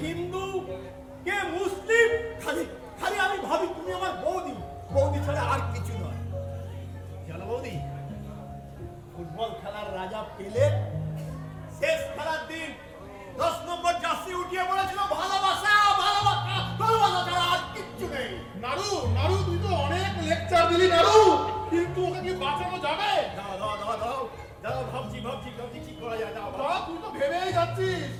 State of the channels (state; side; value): identical; both; correlation 1.00